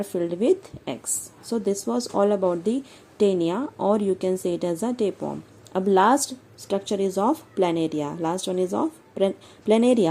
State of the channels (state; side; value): identical; both; correlation 1.00